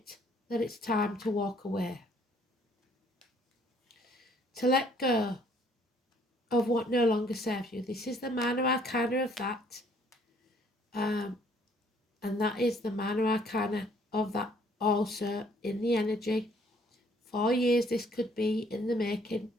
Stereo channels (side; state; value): both; normal; correlation 0.62